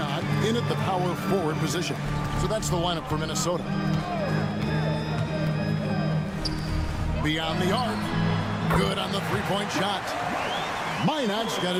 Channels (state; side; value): identical; both; correlation 1.00